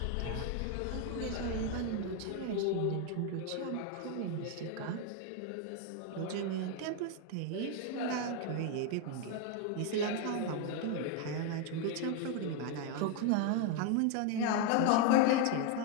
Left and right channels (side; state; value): both; different; correlation 0.01